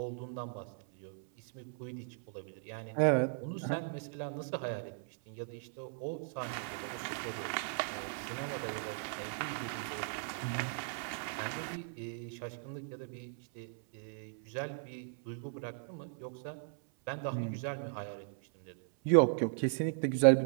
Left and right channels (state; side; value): silent; left; 53 dB below the other